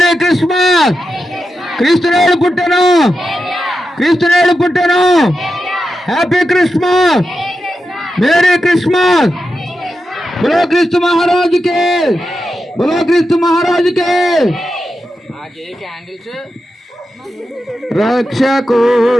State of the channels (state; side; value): normal; both; correlation 0.89